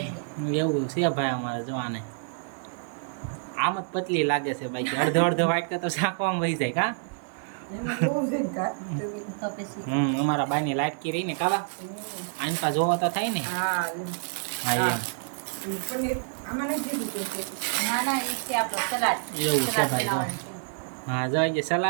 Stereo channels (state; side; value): silent; left; 60 dB below the other